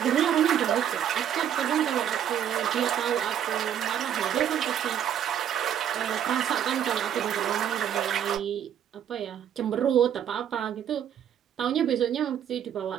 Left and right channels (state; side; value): quieter; left; 9.6 dB